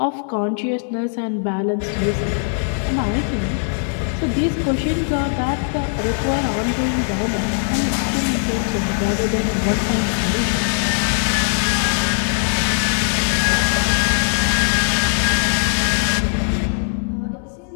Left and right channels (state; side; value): silent; right; 66 dB below the other